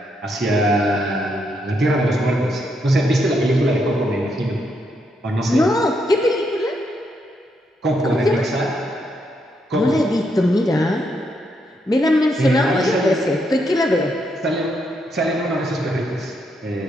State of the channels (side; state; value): both; normal; correlation 0.78